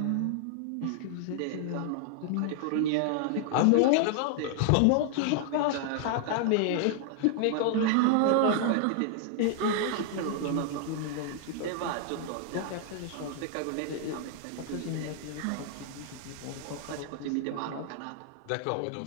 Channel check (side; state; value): both; different; correlation 0.00